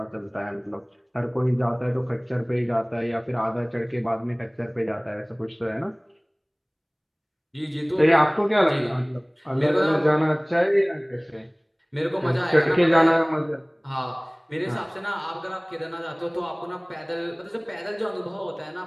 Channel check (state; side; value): identical; both; correlation 1.00